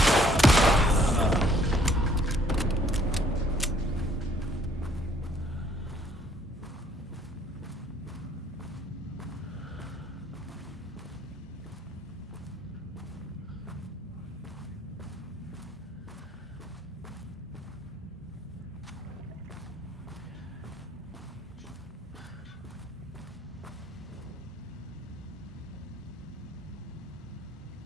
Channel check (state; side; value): normal; both; correlation 0.62